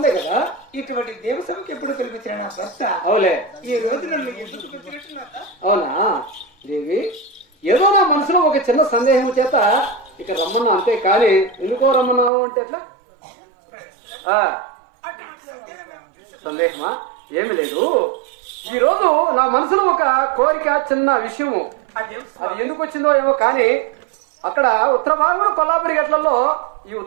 కదా. ఇటువంటి దేవసభకు ఎప్పుడు పిలిపించిన నా భర్త అవులే. ఈ రోజు నన్ను ఎందుకు పిలిపించినట్టు? అవునా దేవి, ఏదో నా మనసులో ఒక చిన్న సందేహం చేత ఇక రమ్మన్నా, అంతే కానీ ఎందుకో రమ్మన్నావు అంటే ఎట్లా? సందేహమా? ఏమి లేదు. ఈ రోజు నా మనసులో ఒక కోరిక, చిన్న విషయము. అది ఎందుకు వచ్చిందో ఏమో కానీ అక్కడ ఉత్తర భాగంలో కొల్లాపురి గట్లలో, ఈ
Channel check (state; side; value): drops out; left; at 12.3 s